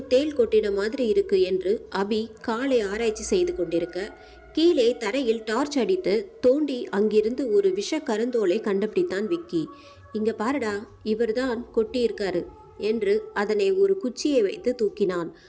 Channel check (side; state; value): both; identical; correlation 1.00